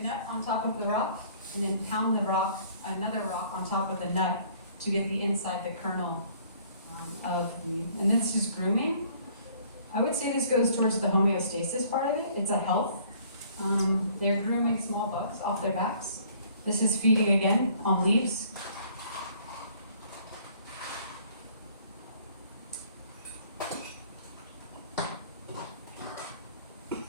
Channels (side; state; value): both; inverted; correlation -0.57